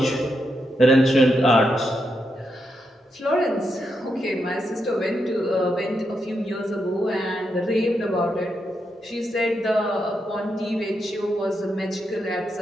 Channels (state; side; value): normal; both; correlation 0.83